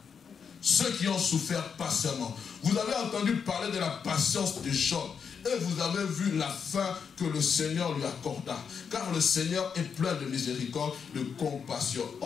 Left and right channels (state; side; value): quieter; right; 6.5 dB